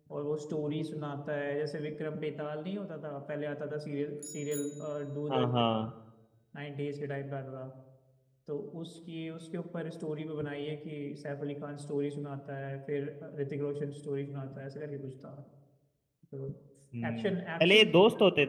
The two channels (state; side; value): identical; both; correlation 1.00